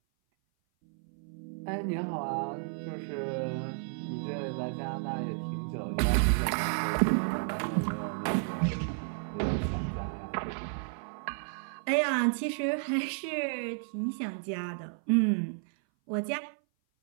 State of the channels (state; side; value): silent; left; 56 dB below the other